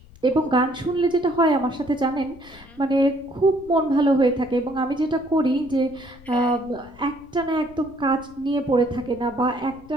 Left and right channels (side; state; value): left; noise; rumble, 23 dB below the sound